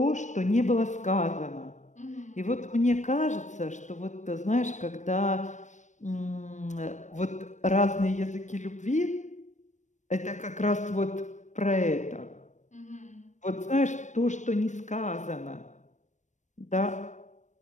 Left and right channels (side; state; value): right; late; 0.35 ms